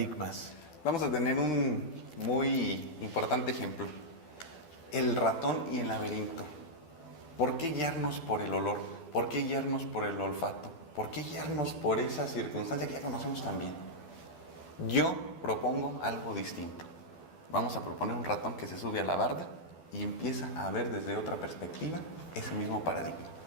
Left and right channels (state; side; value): late; right; 12 ms